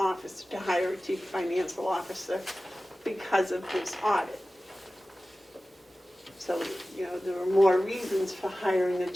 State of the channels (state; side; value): normal; both; correlation 0.96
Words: to hire a chief financial officer because of this audit. So, there were more reasons for hiring a